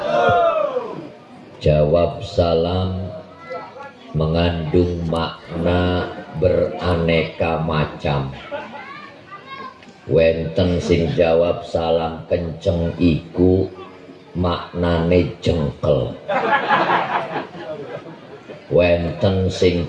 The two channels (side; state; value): both; identical; correlation 1.00